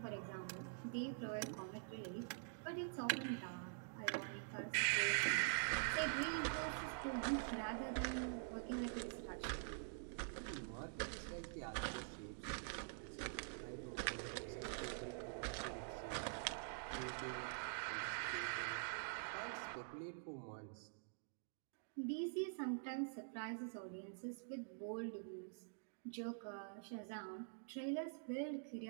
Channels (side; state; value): left; silent; digital silence